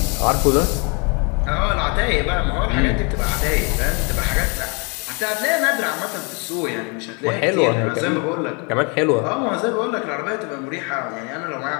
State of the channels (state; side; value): quieter; right; 33.1 dB